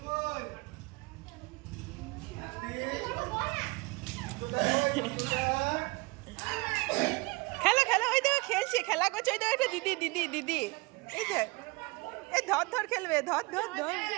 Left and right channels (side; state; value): left; quieter; 25.6 dB